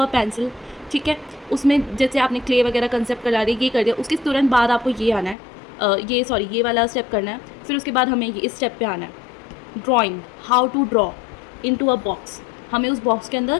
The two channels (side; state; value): right; drops out; at 5.4 s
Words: पेंसिल। ठीक है, उसमें जैसे आपने क्ले वगैरह कंसेप्ट करा दिया, ये कर दिया, उसके तुरंत बाद आपको ये आना है, ये वाला स्टेप करना है। फिर उसके बाद हमें ये इस स्टेप पे आना है, drawing, how to draw into a box. हमें उस बॉक्स के अंदर